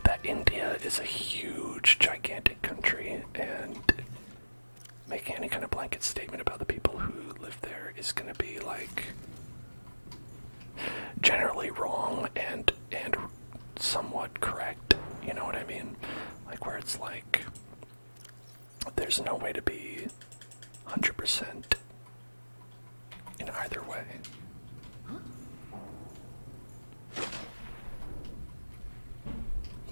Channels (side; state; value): both; inverted; correlation -1.00